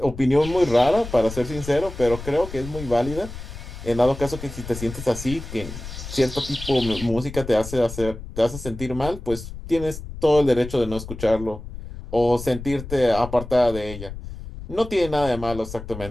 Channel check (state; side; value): noise; left; rumble, 11 dB below the sound